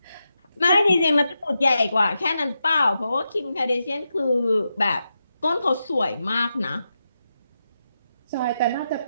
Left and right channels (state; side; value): inverted; both; correlation -0.87